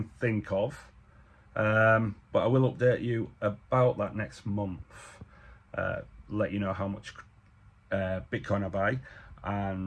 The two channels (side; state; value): both; identical; correlation 1.00